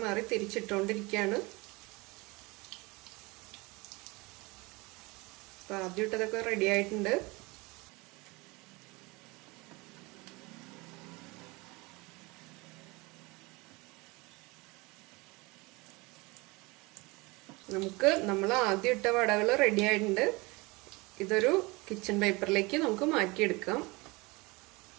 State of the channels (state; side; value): quieter; left; 24.8 dB